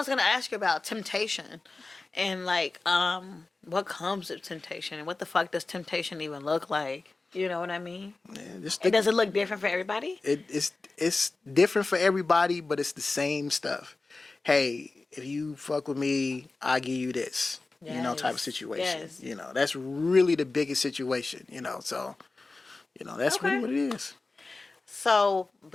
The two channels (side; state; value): right; quieter; 3.5 dB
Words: going to ask you about, temptation. And like, what comes with temptation? And what the fuck does temptation even look like? You know what I mean? Yeah, does it look different for everybody? It's different for everybody, but it's the same stuff. Hey, if you fuck with me, I'll give you this. You know, type of situation. You know, that's really the biggest situation, you know. So, you know, that's really what it is. So,